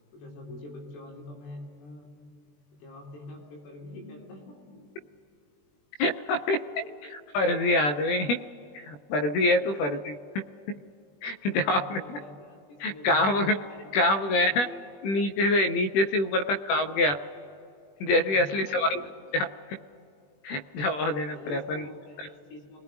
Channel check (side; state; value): right; late; 21 ms